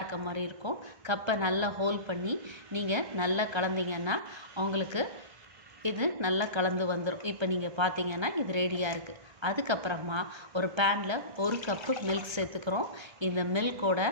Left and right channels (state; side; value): late; left; 1.3 ms